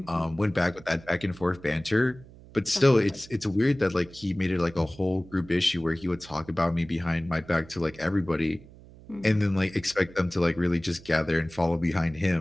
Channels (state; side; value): noise; right; hum, 21 dB below the sound